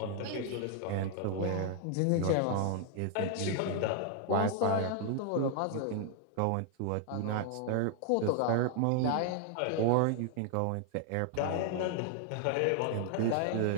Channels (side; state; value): both; different; correlation 0.00